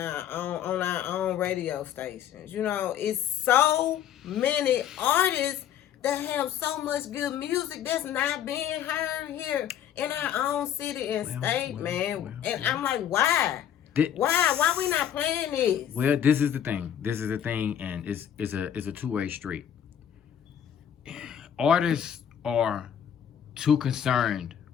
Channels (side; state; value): right; quieter; 9.7 dB